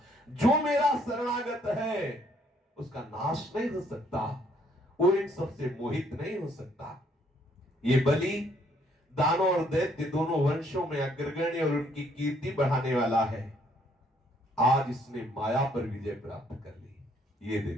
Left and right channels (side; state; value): both; normal; correlation 0.67